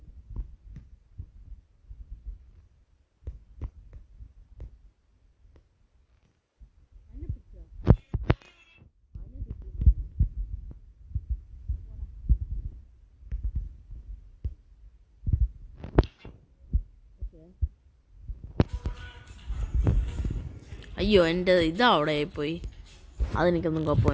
അയ്യോ എൻ്റെ ഇതാ അവിടെ പോയി. അതെനിക്കൊന്നും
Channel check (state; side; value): identical; both; correlation 1.00